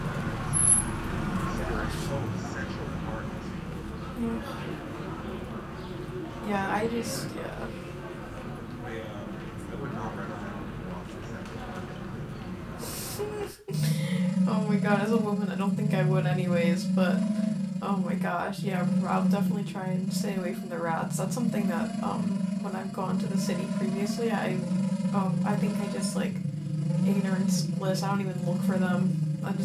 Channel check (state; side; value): identical; both; correlation 1.00